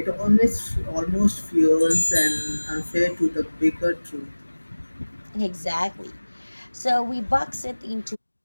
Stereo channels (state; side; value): inverted; both; correlation -1.00